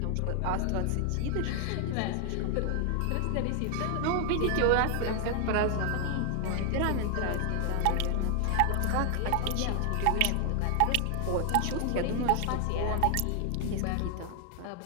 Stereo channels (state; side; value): different; both; correlation 0.00